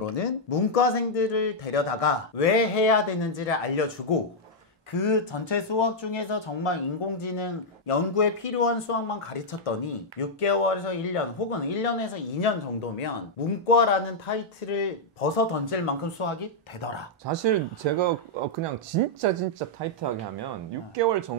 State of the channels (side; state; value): both; normal; correlation -0.04